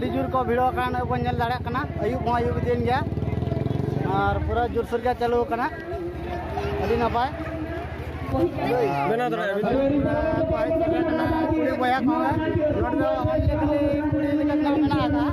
जुर को भिड़ो कान को नेल दाड़ा कना अयुब अयुब दिन गया और पूरा जोर सोर के चालू कना अड़ी नपाय बेना दरा कुड़ी बया को नोड दो हल्ले कुड़ी लेका कना आदा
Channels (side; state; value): both; identical; correlation 1.00